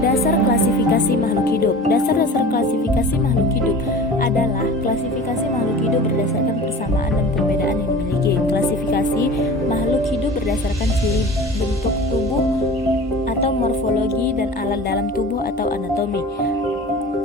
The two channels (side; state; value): both; normal; correlation 0.39